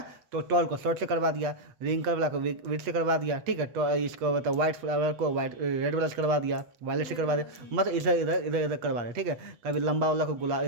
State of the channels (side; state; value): left; late; 8.3 ms